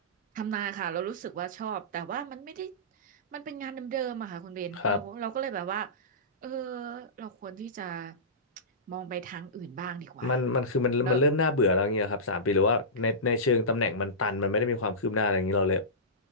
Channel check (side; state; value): both; normal; correlation -0.19